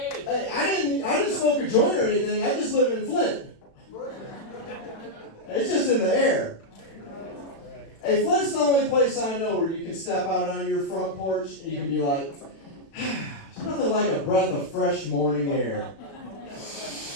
I didn't smoke a joint or anything, I just live in Flint. It's just in the air. Hey, Flint's the only place I know where you can step out on your front porch and you can be like, there's nothing like a breath of fresh morning air.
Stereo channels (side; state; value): right; late; 36 ms